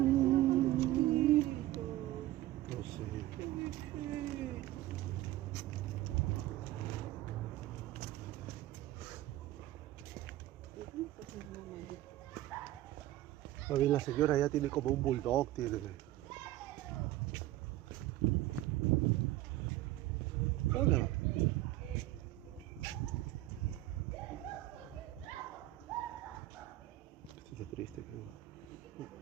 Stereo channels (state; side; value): quieter; left; 15.6 dB